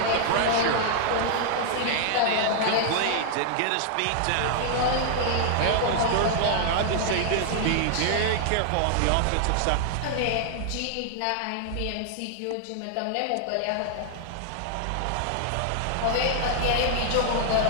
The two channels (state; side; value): different; both; correlation -0.01